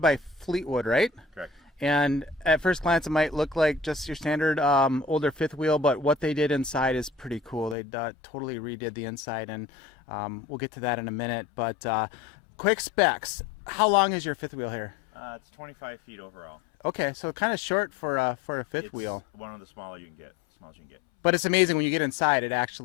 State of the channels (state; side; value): drops out; right; at 7.8 s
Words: Fleetwood, right? Correct. And at first glance, it might look like just your standard older fifth wheel, but what they did inside is pretty cool. They totally redid the inside, and we'll get to that in a minute. But quick specs. How long is your fifth wheel here? It's 25 feet overall. Okay, so kind of short for a fifth wheel. One of the smallest you can get. But it's amazing when you get inside.